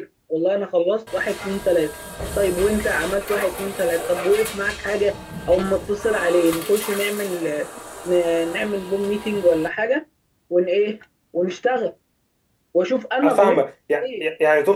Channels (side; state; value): both; identical; correlation 1.00